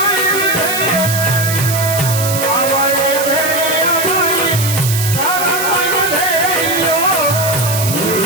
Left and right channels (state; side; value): noise; right; hiss, 4 dB below the sound